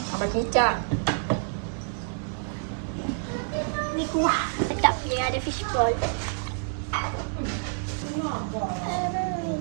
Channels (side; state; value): left; silent; digital silence